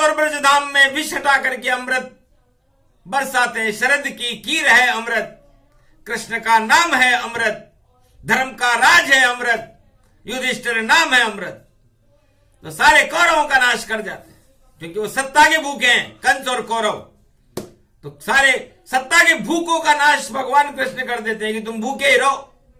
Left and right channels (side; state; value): both; identical; correlation 1.00